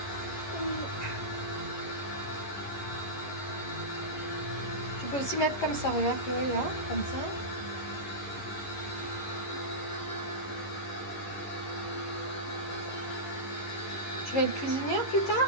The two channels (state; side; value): late; right; 11 ms